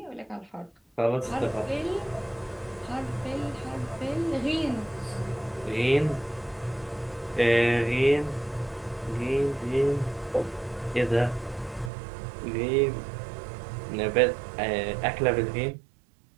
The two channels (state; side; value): drops out; left; at 11.9 s